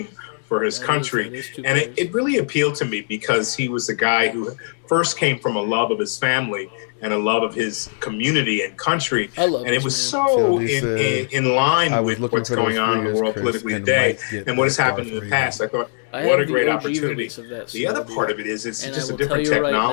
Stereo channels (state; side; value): silent; right; 62 dB below the other